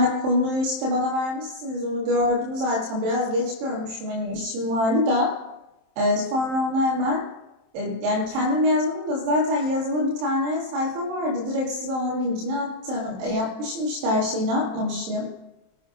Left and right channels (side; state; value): left; late; 27 ms